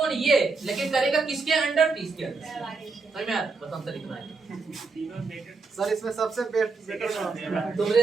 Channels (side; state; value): left; quieter; 4.3 dB